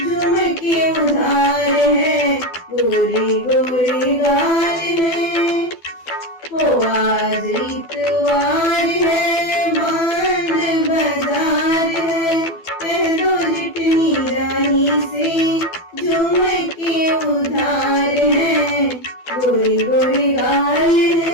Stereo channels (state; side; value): late; right; 12 ms